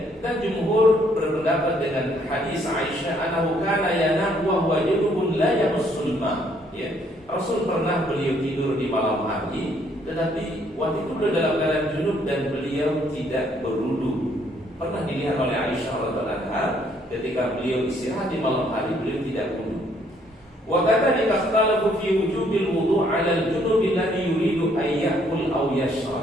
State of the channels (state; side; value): normal; both; correlation 0.67